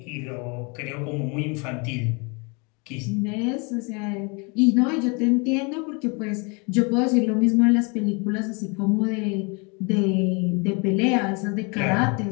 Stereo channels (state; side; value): quieter; right; 31.4 dB